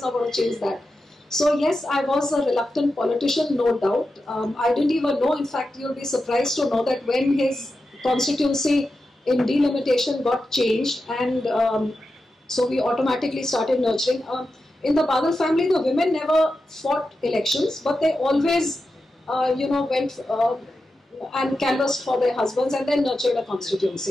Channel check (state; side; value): normal; both; correlation 0.90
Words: not going to change that. So yes, I was a reluctant politician, no doubt. I didn't even know, in fact, you'll be surprised to know that when his constituency in delimitation got changed, and so we automatically started nurturing. In the Badal family, the women never fought elections, but they always, went and canvassed for their husbands and then nurtured a